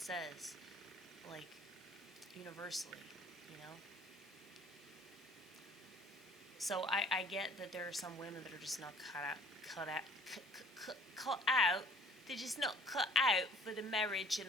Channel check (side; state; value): both; normal; correlation 0.54